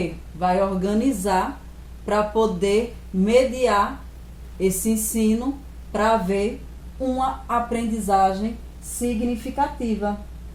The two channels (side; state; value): both; identical; correlation 1.00